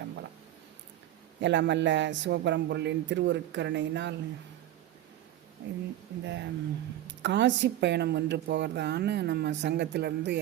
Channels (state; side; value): quieter; left; 13.0 dB